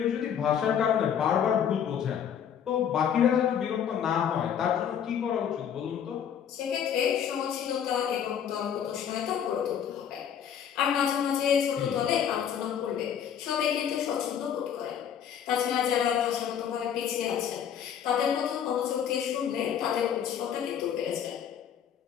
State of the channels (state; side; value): quieter; right; 8.6 dB